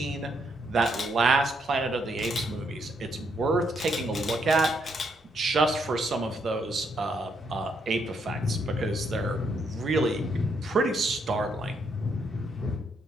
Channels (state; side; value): normal; both; correlation 0.74